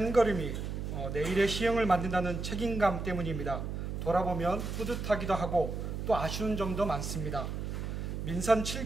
걸음이 내일의 시흥을 만든다는 책임감 때문입니다. 돌아보면 뿌듯하기도 하고 또 아쉬운 점도 많습니다. 민선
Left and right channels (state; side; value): noise; right; hum, 4 dB below the sound